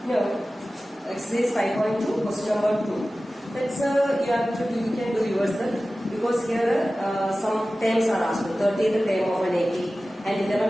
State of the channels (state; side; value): normal; both; correlation 0.96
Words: Now exercise 5.2 question number 2. That's you can do yourself because here some terms are asked. 30th term of an AP and